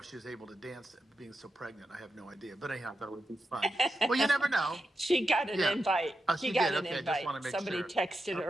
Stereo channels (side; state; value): both; normal; correlation 0.88